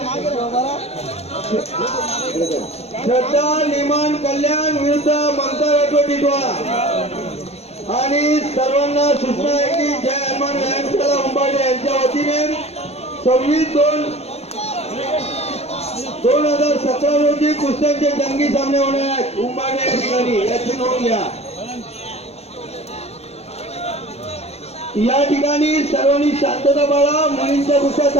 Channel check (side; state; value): right; late; 0.30 ms